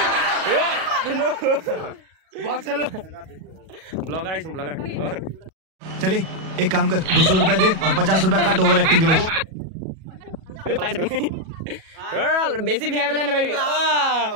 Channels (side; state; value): left; late; 37 ms